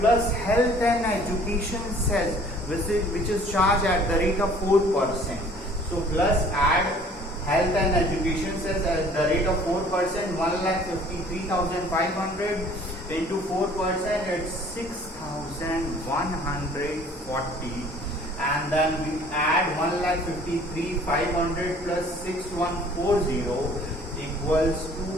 health and education cess, which is charged at the rate of 4%. So plus add health and education cess at the rate of 4%. 1,53,500 into 4%, it's 6,140. And then we add 1,53,500 plus 6,140 equals to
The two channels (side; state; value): both; normal; correlation 0.53